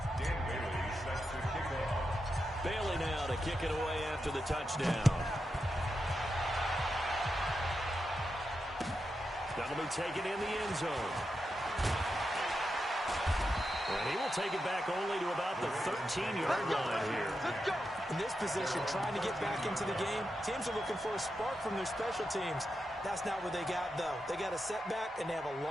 Dan Bailey set to kick off. Bailey now to kick it away after the touchdown. That'll be taken in the end zone. And he will take it back only to about the 13-yard line here. In this position, trying to get back into the game, teams are looking for a spark from their special teams. That's not what they got, though. They got a setback, and they have a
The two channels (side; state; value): both; normal; correlation 0.87